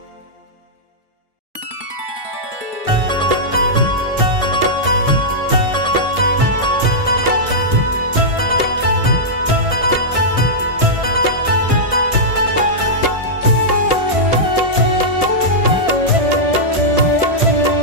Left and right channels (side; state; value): left; late; 1.6 ms